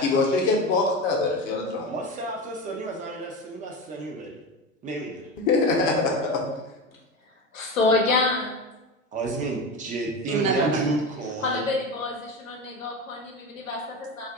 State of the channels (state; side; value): normal; both; correlation 0.23